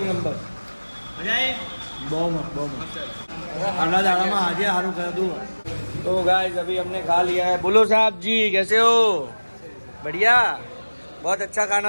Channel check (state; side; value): inverted; both; correlation -1.00